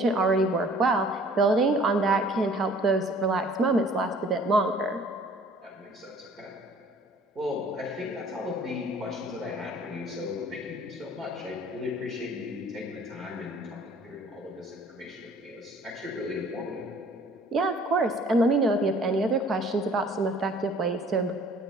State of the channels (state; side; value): normal; both; correlation 0.53